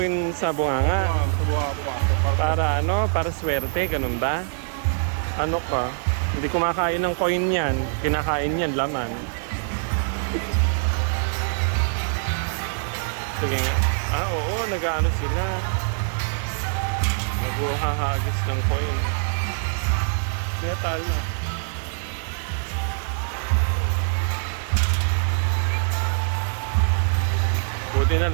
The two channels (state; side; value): silent; left; digital silence